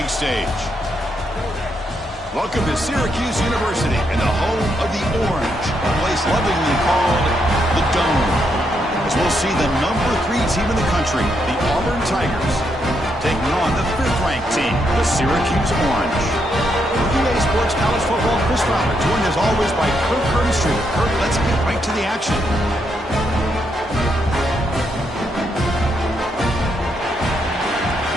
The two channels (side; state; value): both; normal; correlation 0.78